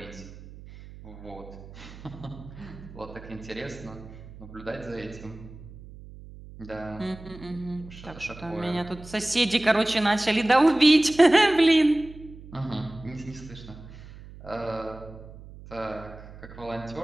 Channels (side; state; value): right; noise; hum, 17 dB below the sound